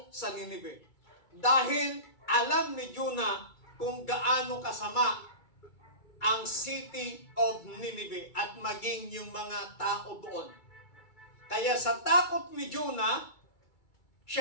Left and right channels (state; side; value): late; right; 2.3 ms